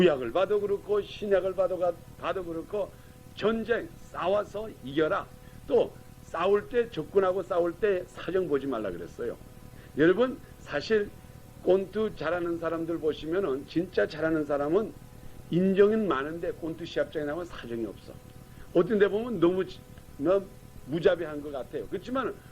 봐도 그렇고 신약을 봐도 그렇고 전쟁 싸워서 이겨라. 또 싸울 때 적군하고 싸울 때 사정 보지 말라 그랬어요. 여러분 사실 꼰투 잘하는 사람들 보시면은 진짜 잘하는 사람은 인정은 많은데 꼰투 시합장에 나오면 사정이 없어. 어떤 데 보면 너무 무자비한 것 같아요. 그렇지만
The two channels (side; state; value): both; identical; correlation 1.00